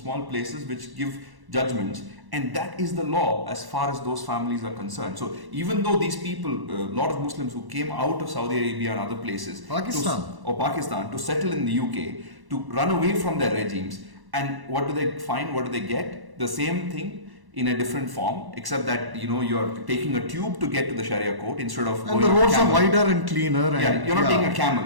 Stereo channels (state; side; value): late; left; 1.1 ms